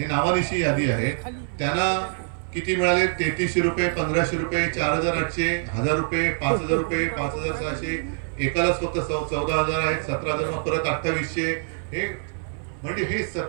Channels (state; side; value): silent; left; 59 dB below the other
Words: नावानिशी यादी आहे. त्यांना किती मिळाले? 3300 रुपये, 1500 रुपये, 4,800, 1,000 रुपये, 5,000 रुपये, 5,600. एकालाच फक्त 14,000 आहेत, 17,000, मग परत 2800. हे म्हणजे हे